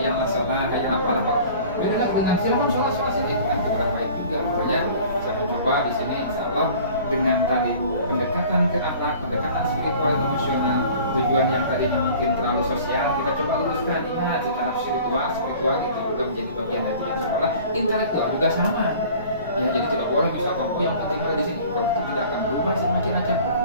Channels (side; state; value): both; inverted; correlation -0.46